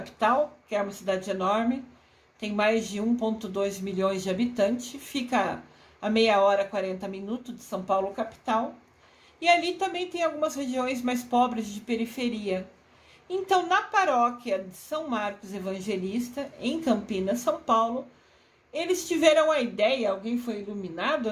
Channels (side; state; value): both; identical; correlation 1.00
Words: que é uma cidade enorme, tem mais de 1,2 milhões de habitantes, fica a meia hora, 40 minutos de São Paulo, capital. E ali também tem algumas regiões mais pobres de periferia. Então, na paróquia de São Marcos Evangelista, em Campinas, São Paulo, eles tiveram a ideia, alguém foi iluminado,